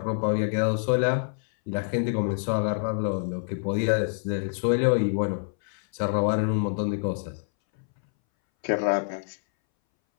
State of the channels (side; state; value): right; silent; 61 dB below the other